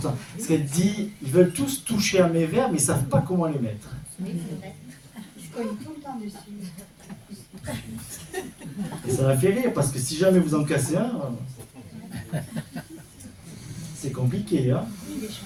Parce qu'elle dit, ils veulent tous toucher à mes verres, mais ils ne savent pas comment les mettre. Oui, c'est vrai. Ils se collent tout le temps dessus. Et ça la fait rire, parce que si jamais vous en cassez un, c'est compliqué, hein?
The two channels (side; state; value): both; identical; correlation 1.00